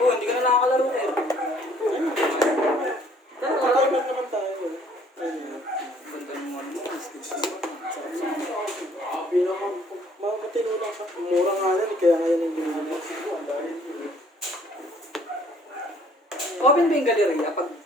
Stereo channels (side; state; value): both; normal; correlation 0.60